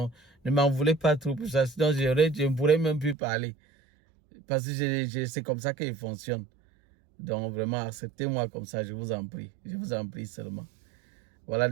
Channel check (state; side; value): drops out; left; at 3.2 s